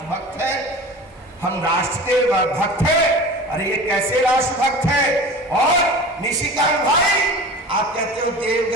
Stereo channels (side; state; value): both; normal; correlation 0.36